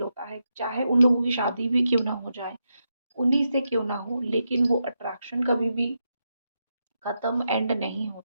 होता है, चाहे उन लोगों की शादी भी क्यों ना हो जाए, उन्हीं से क्यों ना हो, लेकिन वो अट्रैक्शन कभी भी ख़त्म एंड नहीं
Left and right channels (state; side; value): inverted; both; correlation -0.85